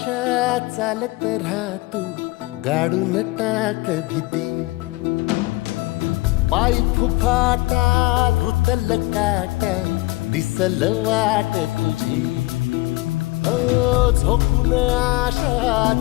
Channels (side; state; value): right; quieter; 21.7 dB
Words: चालत राहतू गाडून टाक भीती पाय फुफाटा रुतल काटा दिसल वाट तुझी हो झोकून आशा